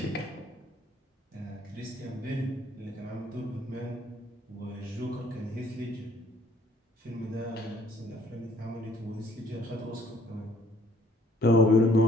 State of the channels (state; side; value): normal; both; correlation 0.60